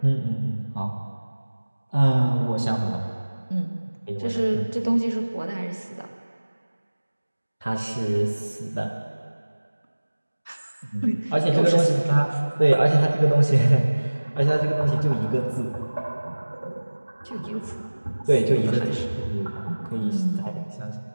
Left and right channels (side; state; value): both; inverted; correlation -1.00